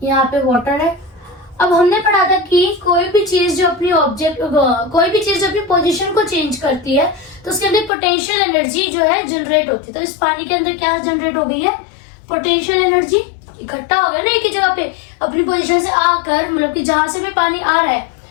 यहाँ पे वाटर है। अब हमने पढ़ा था कि कोई भी चीज जो अपनी पोजीशन को चेंज करती है तो उसके अंदर पोटेंशियल एनर्जी जो है जनरेट होती है। तो इस पानी के अंदर क्या जनरेट हो गई है, पोटेंशियल एनर्जी इकट्ठा हो गया ना एक ही जगह पे अपनी पोजीशन से आकर, मतलब कि जहां से भी पानी आ रहा है,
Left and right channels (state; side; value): drops out; right; at 7.9 s